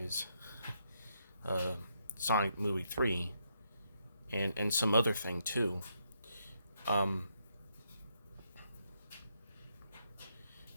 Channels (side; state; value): both; inverted; correlation -0.78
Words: uh, Sonic Movie 3, and some other thing too. Um,